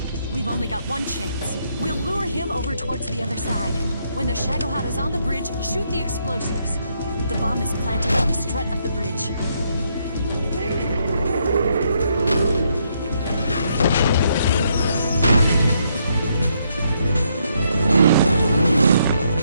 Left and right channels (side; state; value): both; inverted; correlation -0.74